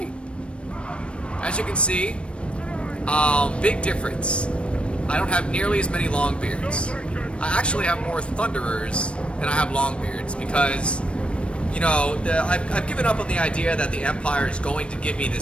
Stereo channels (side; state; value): right; late; 0.059 ms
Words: As you can see, big difference. I don't have nearly as many Longbeards. I actually have more Thunderers than I have Longbeards because, you know, I've given up on the idea that the Empire is going to give me